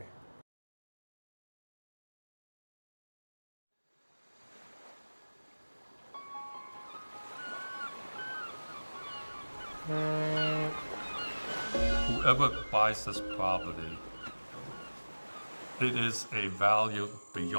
Whoever buys this property, it is a value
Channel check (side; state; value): both; inverted; correlation -1.00